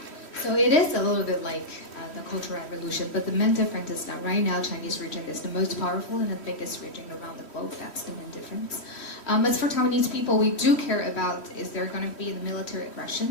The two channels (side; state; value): right; late; 3.1 ms